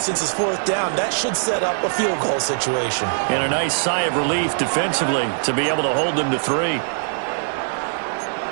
it's 4th down, that should set up a field goal situation. And a nice sigh of relief defensively to be able to hold them to 3.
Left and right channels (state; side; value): silent; left; digital silence